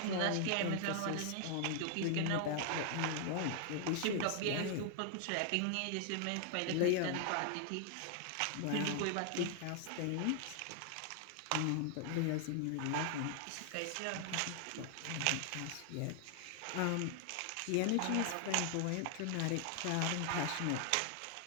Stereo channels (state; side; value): different; both; correlation 0.00